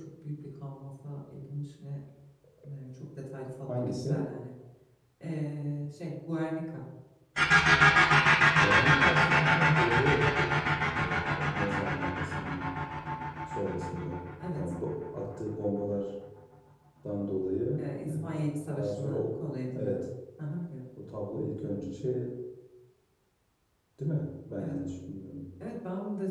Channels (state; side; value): identical; both; correlation 1.00